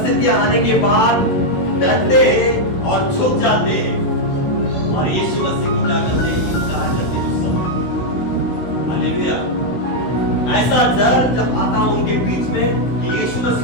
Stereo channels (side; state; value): right; late; 16 ms